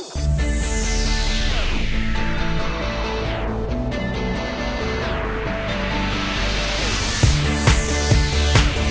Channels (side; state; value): both; identical; correlation 1.00